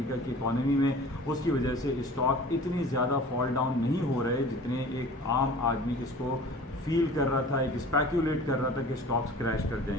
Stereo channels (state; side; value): normal; both; correlation 0.43